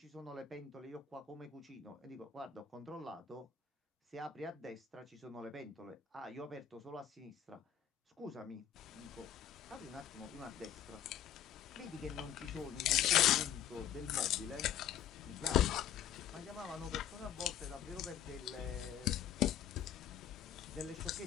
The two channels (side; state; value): right; quieter; 9.8 dB